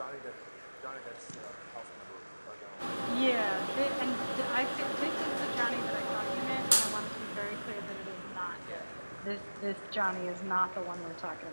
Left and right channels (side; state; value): both; inverted; correlation -1.00